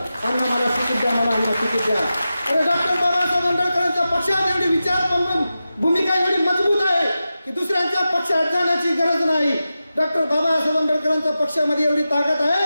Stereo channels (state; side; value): inverted; both; correlation -0.92